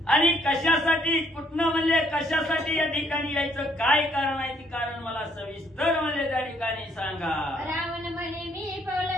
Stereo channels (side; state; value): both; normal; correlation 0.67